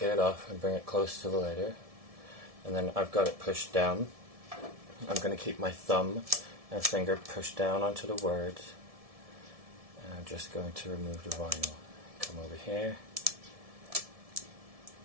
get it off and bring it close to the letter. And then I've got it pushed down. I'm going to keep my thumb and finger pushed down onto the words. And I'm just going to remove the vinyl. Come over here.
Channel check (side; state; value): left; late; 1.7 ms